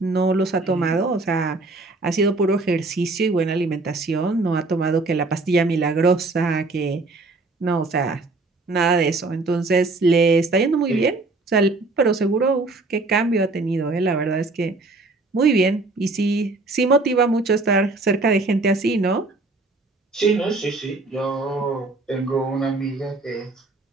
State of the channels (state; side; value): quieter; left; 3.3 dB